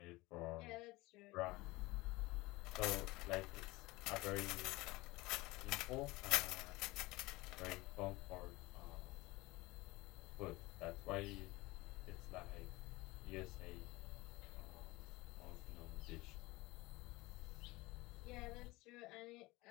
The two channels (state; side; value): quieter; right; 21.4 dB